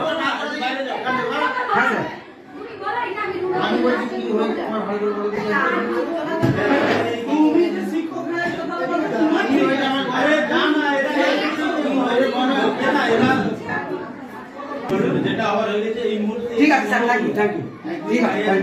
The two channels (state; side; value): identical; both; correlation 1.00